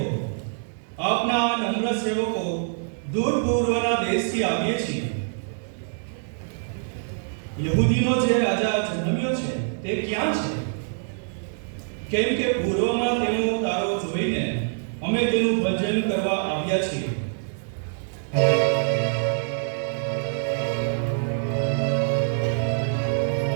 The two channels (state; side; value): silent; left; digital silence